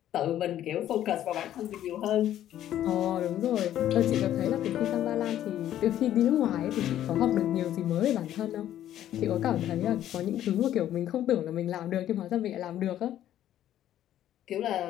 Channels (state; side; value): quieter; right; 11.9 dB